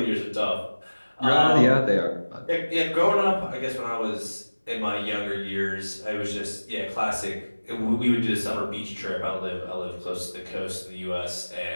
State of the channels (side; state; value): both; inverted; correlation -1.00